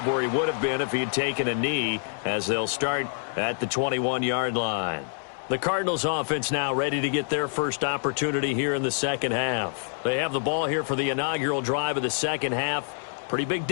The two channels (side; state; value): right; silent; digital silence